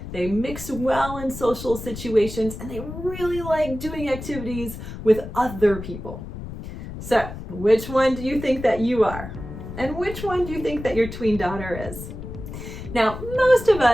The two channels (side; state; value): left; noise; rumble, 10 dB below the sound